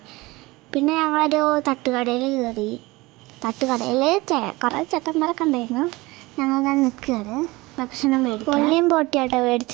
പിന്നെ ഞങ്ങളൊരു തട്ടുകടയിൽ കയറി. തട്ടുകടയിൽ കുറേ ചേട്ടന്മാരൊക്കെ ഉണ്ടായിരുന്നു. ഞങ്ങളങ്ങനെ നിൽക്കുകയാണ്, ഭക്ഷണം മേടിച്ചു. കൊള്ളിയും പൊട്ടിയാട്ടോ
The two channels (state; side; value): quieter; left; 21.7 dB